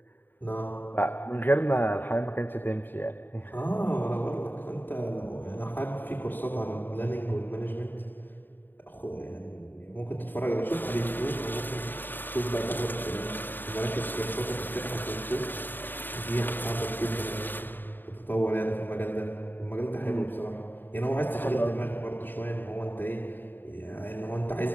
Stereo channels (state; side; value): late; right; 0.092 ms